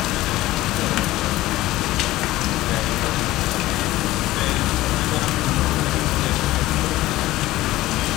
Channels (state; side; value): quieter; right; 16.8 dB